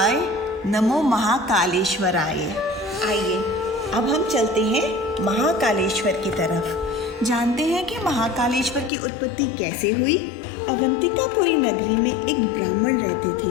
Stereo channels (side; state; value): right; drops out; at 8.9 s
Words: नमो महाकालेश्वराय। आइए अब हम चलते हैं महाकालेश्वर की तरफ। जानते हैं कि महाकालेश्वर की उत्पत्ति कैसे हुई। अवंतिकापुरी नगरी में एक ब्राह्मण रहते